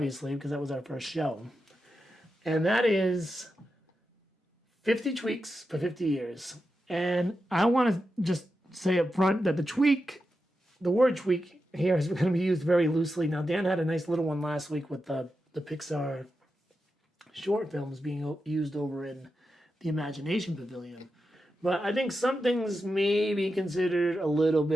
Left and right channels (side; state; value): both; normal; correlation 0.89